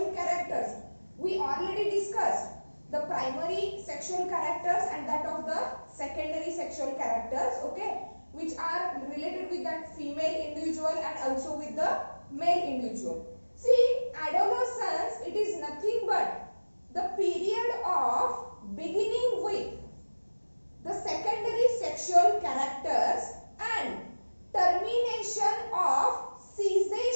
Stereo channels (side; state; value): both; inverted; correlation -1.00